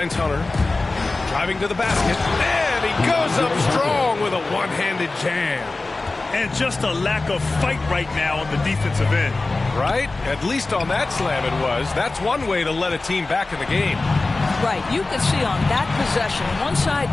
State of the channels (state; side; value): quieter; right; 3.3 dB